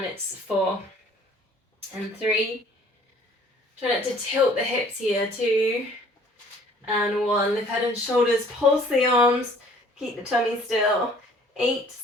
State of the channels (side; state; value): both; normal; correlation 0.55